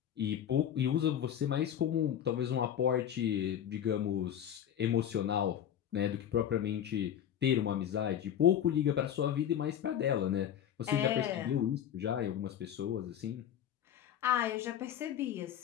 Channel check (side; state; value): right; quieter; 9.9 dB